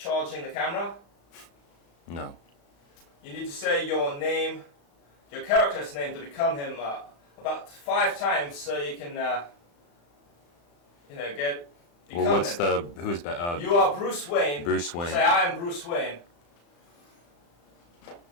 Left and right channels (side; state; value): right; late; 35 ms